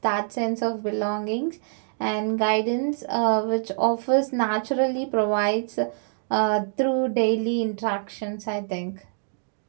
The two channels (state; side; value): silent; left; digital silence